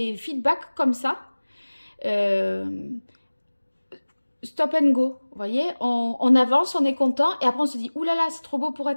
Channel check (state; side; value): inverted; both; correlation -1.00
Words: feedbacks comme ça. Stop and go, vous voyez, on avance, on est content, et après on se dit, oulala, c'est trop beau pour